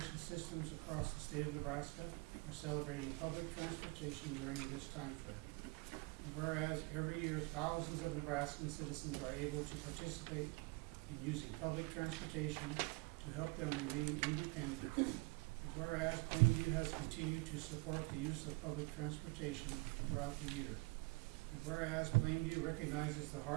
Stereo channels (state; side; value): quieter; left; 26.7 dB